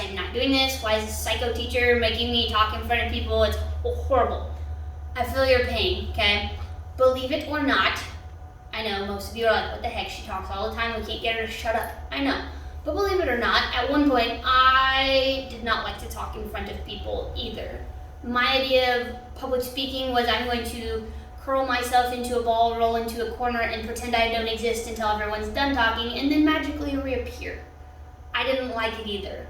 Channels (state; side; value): identical; both; correlation 1.00